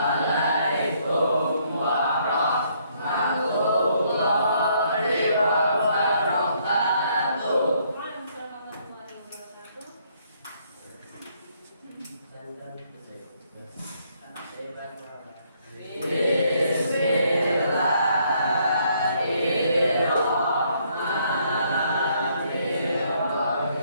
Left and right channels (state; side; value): inverted; both; correlation -0.69